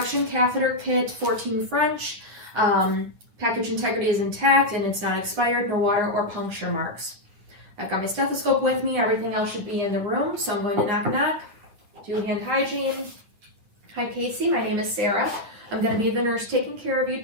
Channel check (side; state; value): left; late; 9.9 ms